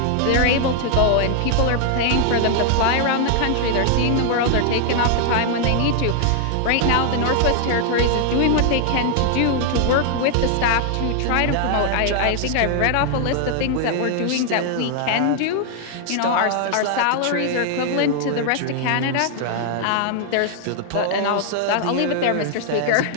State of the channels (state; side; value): different; both; correlation 0.00